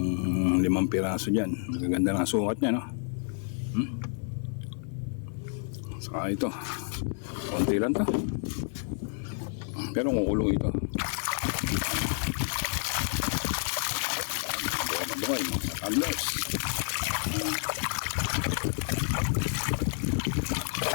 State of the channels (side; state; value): right; silent; 58 dB below the other